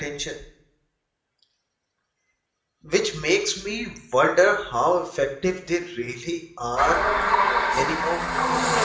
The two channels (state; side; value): identical; both; correlation 1.00